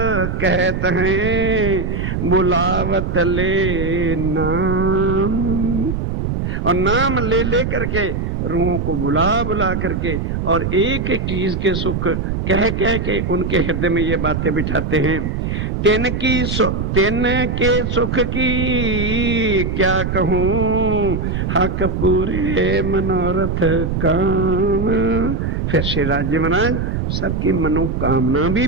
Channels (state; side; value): noise; right; rumble, 2 dB below the sound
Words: कहते हैं, बुलावत ले नाम। और नाम ले ले करके रूहों को बुला बुला करके और एक एक चीज के सुख कह कह के उनके हृदय में ये बातें बिठाते हैं। तेन के सुख की क्या कहूं, हक पूरे मनोरथ काम। फिर श्री राज्य महाराज सबकी मनोकामना भी